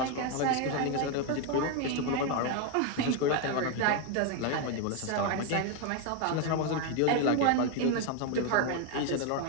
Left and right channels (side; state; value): both; different; correlation 0.01